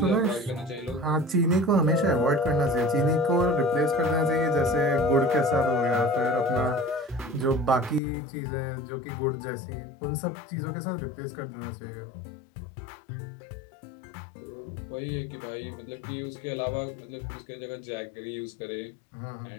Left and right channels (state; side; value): drops out; right; at 8.0 s